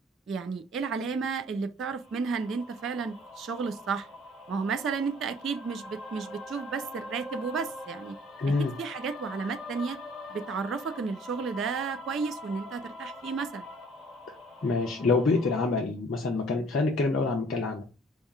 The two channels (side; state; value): both; normal; correlation 0.55